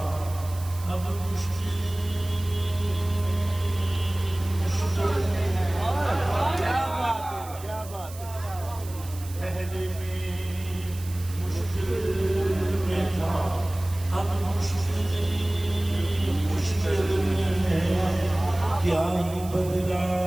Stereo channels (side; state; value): right; noise; hiss, 17 dB below the sound